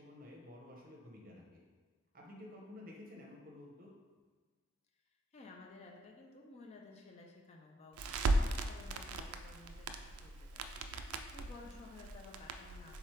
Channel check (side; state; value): both; normal; correlation 0.74